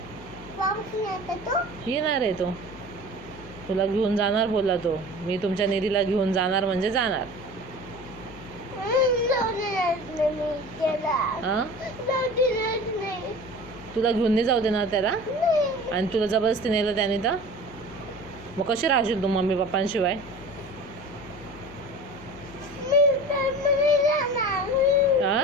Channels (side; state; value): left; noise; hum, 17 dB below the sound